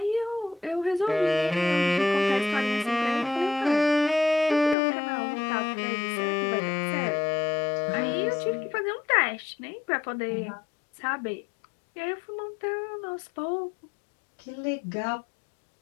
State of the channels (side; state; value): right; drops out; at 4.8 s